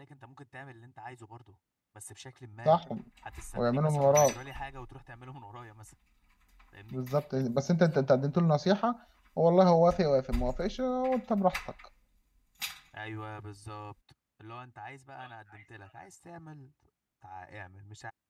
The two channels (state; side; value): identical; both; correlation 1.00